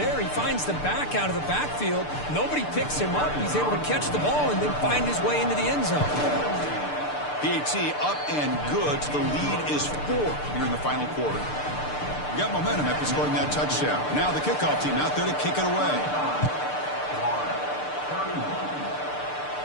He finds the back out of the backfield. Nobody picks him up. He's able to catch the ball and then find his way into the end zone. PAT up and good. So the lead is 4 here in the final quarter. You got momentum after scoring that touchdown. Now the kickoff team out there to kick it away.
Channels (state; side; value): late; right; 6.7 ms